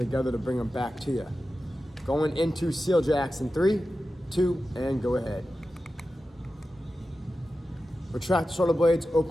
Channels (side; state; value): both; normal; correlation 0.93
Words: to bring them back to you. Going into seal jacks in 3, 2, and go ahead. Retract the shoulder blades,